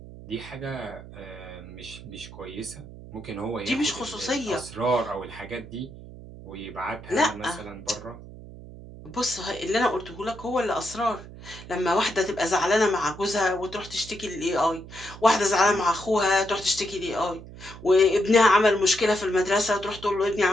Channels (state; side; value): noise; right; hum, 15 dB below the sound